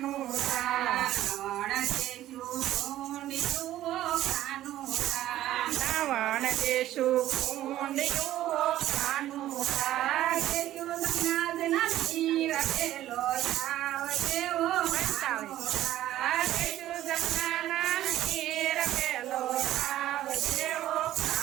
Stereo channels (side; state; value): left; quieter; 13.6 dB